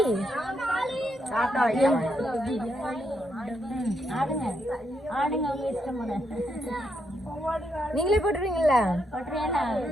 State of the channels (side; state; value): both; normal; correlation 0.79